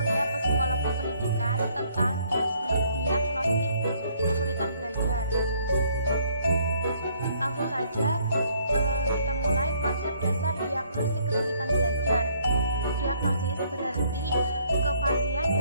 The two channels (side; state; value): both; inverted; correlation -0.65